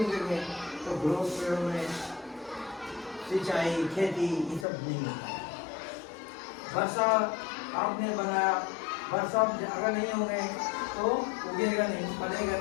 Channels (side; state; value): right; drops out; at 4.7 s